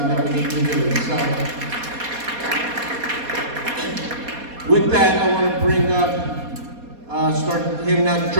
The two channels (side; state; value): left; late; 4.2 ms